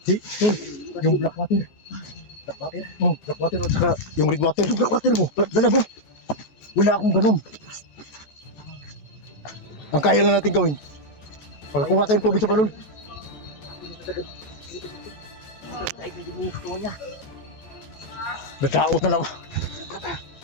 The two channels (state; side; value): late; right; 14 ms